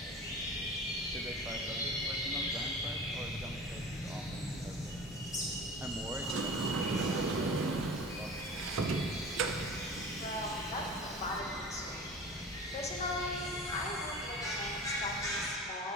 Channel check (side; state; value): both; normal; correlation 0.36